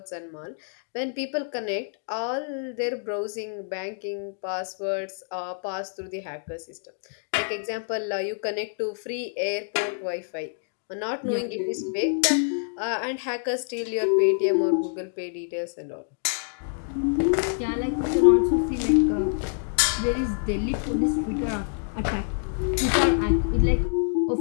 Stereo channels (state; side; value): silent; right; digital silence